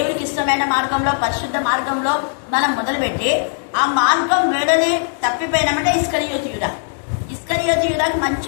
ఇష్టమైన మార్గంలో, పరిశుద్ధ మార్గంలో మనం మొదలుపెట్టి ఆ మార్గం వేడని తప్పిపోయినామంటే ఇస్కరియోతు యూదాకి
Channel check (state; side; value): silent; right; 67 dB below the other